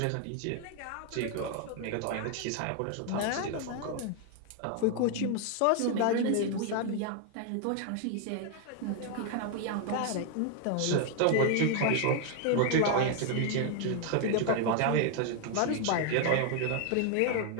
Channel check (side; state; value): both; different; correlation 0.00